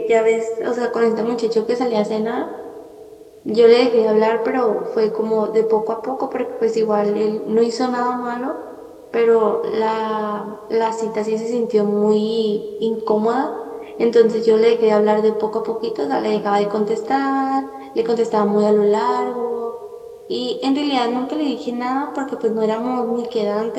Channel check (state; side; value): identical; both; correlation 1.00